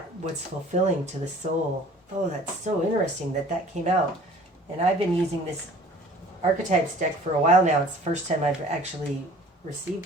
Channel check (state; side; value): normal; both; correlation 0.49